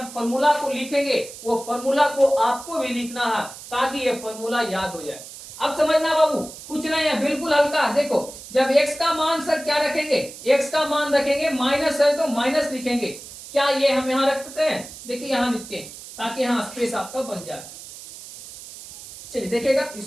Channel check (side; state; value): right; noise; hiss, 14 dB below the sound